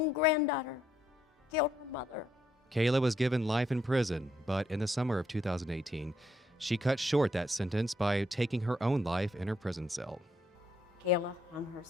granddaughter killed her mother. Kayla was given life in prison, but in the summer of 2018, she cut short that sentence by taking her own life in her prison cell. Kayla hung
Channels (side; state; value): both; normal; correlation 0.74